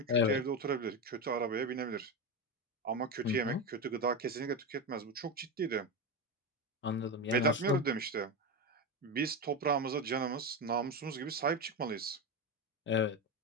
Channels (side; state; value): both; normal; correlation 0.16